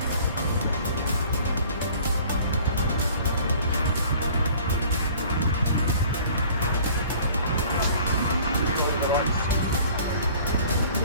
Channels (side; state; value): both; inverted; correlation -0.50